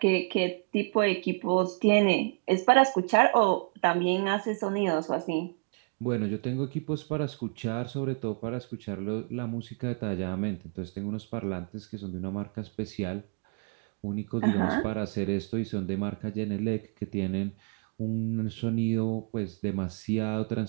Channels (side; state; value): left; quieter; 36.2 dB